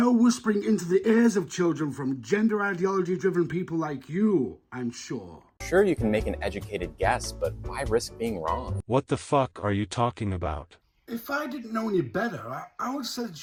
whispering into the ears of children from gender ideology-driven people like you, I'm sure. Sure, you can make an educated guess, but why risk being wrong? What the fuck are you talking about? If I didn't know any better, I would say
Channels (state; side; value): identical; both; correlation 1.00